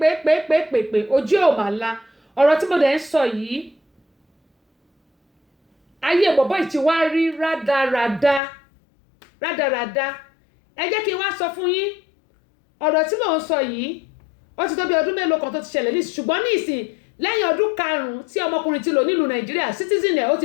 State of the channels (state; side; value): drops out; right; at 8.4 s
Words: pè ojú ò mà la ọ̀rọ̀ tí mo dẹ̀ ń sọ yìí ayé bọ̀bọ̀ yìí ti wá rí rádaràda ẹ jẹ́ kí n wá sọ fún yín ọ̀rọ̀ tí mò ń sọ yìí ó ti tó bí ọdún mélòó kan tó ti ṣẹlẹ̀ ní ṣùgbọ́n ní ìsìn lẹ́yìn ọdún 5 tí ọmọkùnrin ti lò nílùú Nàìjíríà citizen ẹ̀ ó